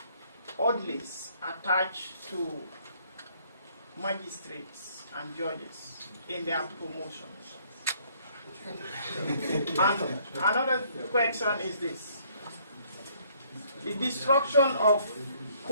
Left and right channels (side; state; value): both; inverted; correlation -0.64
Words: orderlies attached to magistrates and judges in their promotions? And another question is this. The destruction of